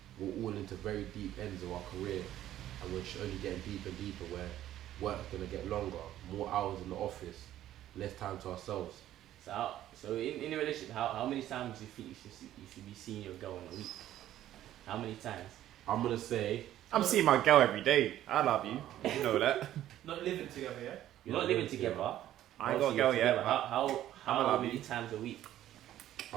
we're all into very deep ends of our career and we're only getting deeper and deeper where work's going to get longer, more hours in the office, less time to ourselves. So in a relationship, how many times do you think you should be seeing your girl in a week? How many times? I'm going to say I'm seeing my girl every day. I love you. You know that. Not living together, yeah? You're not living together. I ain't got a girl yet. How many times a week?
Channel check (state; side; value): quieter; left; 12.7 dB